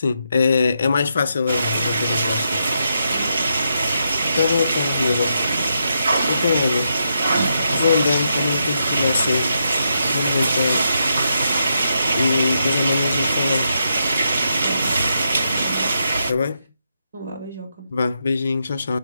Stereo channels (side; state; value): both; inverted; correlation -0.81